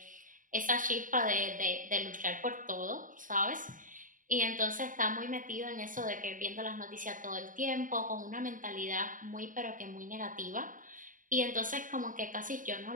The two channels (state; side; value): late; left; 0.39 ms